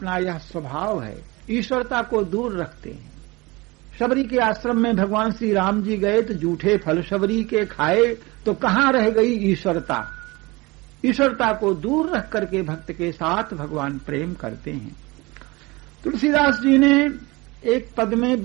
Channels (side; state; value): left; quieter; 23.7 dB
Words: यह स्वभाव है, ईश्वरता को दूर रखते हैं। शबरी के आश्रम में भगवान श्री राम जी गए तो जूठे फल शबरी के खाए, तो कहां रह गई ईश्वरता। ईश्वरता को दूर रख करके भक्त के साथ भगवान प्रेम करते हैं। तुलसीदास जी ने एक पद में,